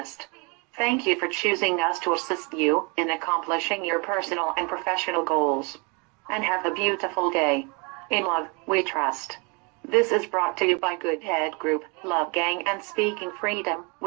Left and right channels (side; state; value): left; quieter; 31.3 dB